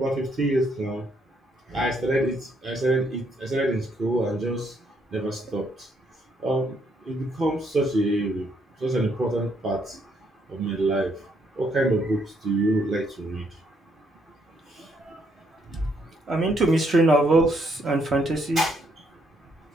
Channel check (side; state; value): both; normal; correlation 0.73